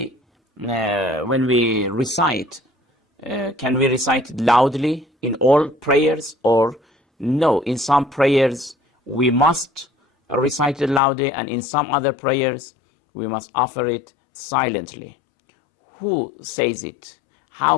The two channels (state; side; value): drops out; right; at 11.0 s